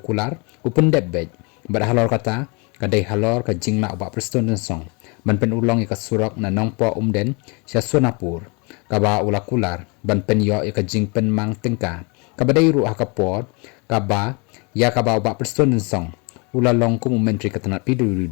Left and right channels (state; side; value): quieter; right; 31.1 dB